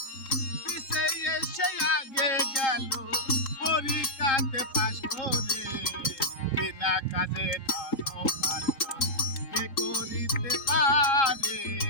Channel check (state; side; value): late; right; 3.7 ms